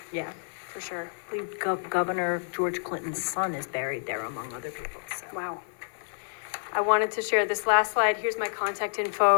Yeah. for sure. I believe Governor George Clinton's son is buried there, among other people, so. Wow. I wanted to share this last slide. Here's my contact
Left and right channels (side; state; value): right; silent; 59 dB below the other